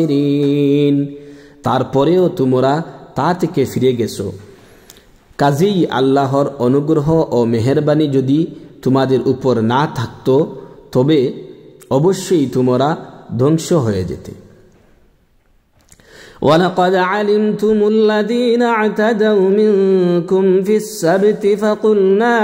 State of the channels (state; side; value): identical; both; correlation 1.00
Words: তারপরেও তোমরা তা থেকে ফিরে গেছো, কাজেই আল্লাহর অনুগ্রহ ও মেহেরবানি যদি তোমাদের উপর না থাকতো তবে অবশ্যই তোমরা ধ্বংস হয়ে যেতে। وَلَقَدْ عَلِمْتُمُ الَّذِينَ اعْتَدَوْا مِنكُمْ فِي السَّبْتِ فَقُلْنَا